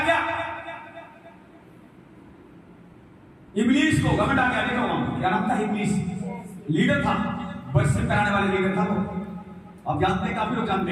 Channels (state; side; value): identical; both; correlation 1.00